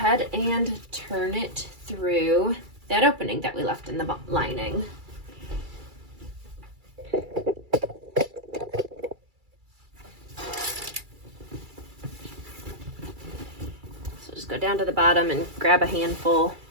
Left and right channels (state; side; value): late; left; 2.3 ms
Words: and turn it through that opening that we left in the lining. So just go down to the bottom and grab a handful,